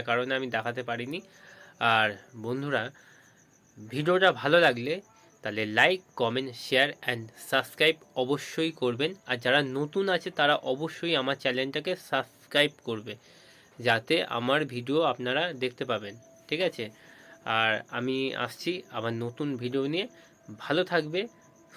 কারণে আমি দেখাতে পারিনি। আর বন্ধুরা, ভিডিওটা ভালো লাগলে তাহলে like, comment, share and subscribe অবশ্যই করবেন। আর যারা নতুন আছে তারা অবশ্যই আমার চ্যানেলটাকে সাবস্ক্রাইব করবে, যাতে আমার ভিডিও আপনারা দেখতে পাবেন, ঠিক আছে? আর আমি আসছি আবার নতুন ভিডিও নিয়ে। ভালো থাকবে,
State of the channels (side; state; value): both; identical; correlation 1.00